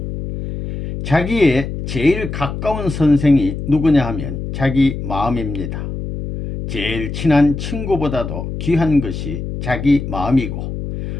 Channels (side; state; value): left; noise; hum, 6 dB below the sound